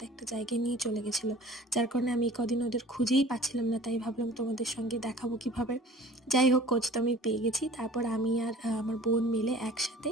একটা জায়গায় নিয়ে চলে গেছিলো, যার কারণে আমি কদিন ওদের খুঁজেই পাচ্ছিলাম না, তাই ভাবলাম তোমাদের সঙ্গে দেখাবো কিভাবে। যাই হোক, খোঁজ তো আমি পেয়ে গেছি। তারপর আমি আর আমার বোন মিলে একসাথে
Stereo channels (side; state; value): both; normal; correlation 0.46